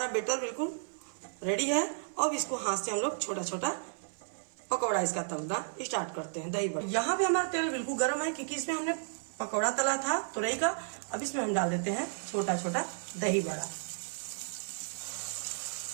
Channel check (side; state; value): left; silent; 56 dB below the other